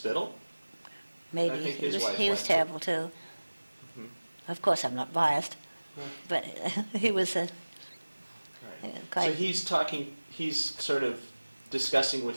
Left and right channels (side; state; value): both; inverted; correlation -1.00